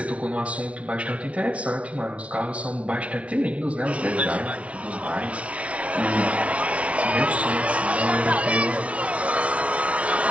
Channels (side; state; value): left; late; 0.063 ms